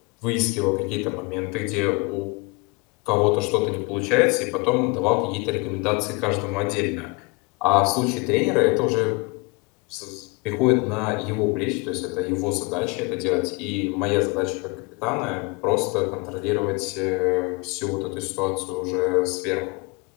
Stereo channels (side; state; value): right; quieter; 29.1 dB